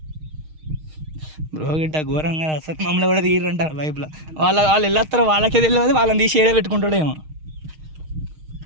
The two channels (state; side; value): late; left; 6.4 ms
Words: బ్రో గిట్ట ఘోరంగా అసలు మమ్మల్ని కూడా తీయరంటారు వైపులో వాళ్ళు వెళ్ళొస్తారో వాళ్ళకే తెలియదు వాళ్ళని తీసి ఏడే పెట్టుకుంటాడేమో